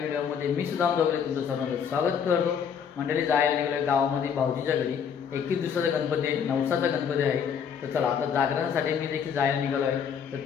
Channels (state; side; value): quieter; right; 7.4 dB